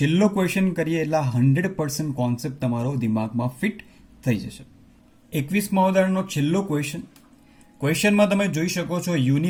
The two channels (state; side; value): identical; both; correlation 1.00